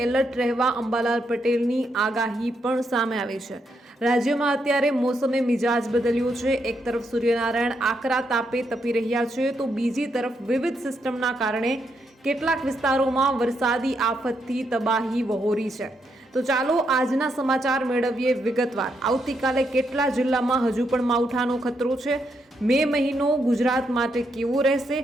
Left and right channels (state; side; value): normal; both; correlation 0.79